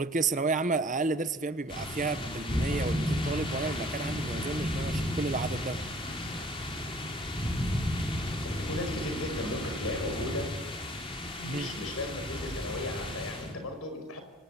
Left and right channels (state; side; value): normal; both; correlation 0.52